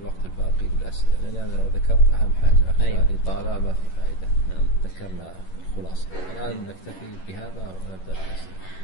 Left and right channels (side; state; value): right; late; 11 ms